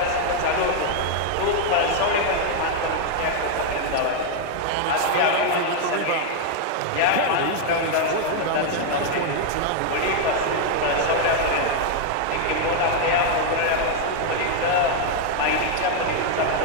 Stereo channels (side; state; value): both; different; correlation 0.00